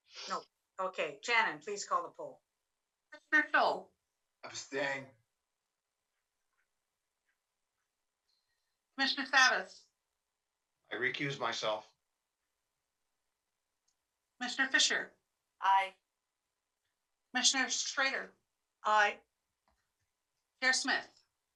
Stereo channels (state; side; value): identical; both; correlation 1.00